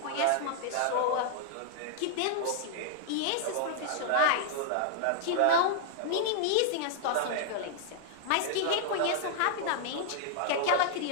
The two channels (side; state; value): both; different; correlation -0.01